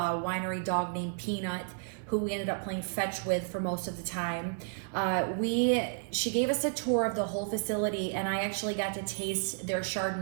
winery dog named Peanut, who we ended up playing fetch with for most of the time. She gave us a tour of the whole facility, and I actually got to taste their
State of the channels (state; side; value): silent; left; digital silence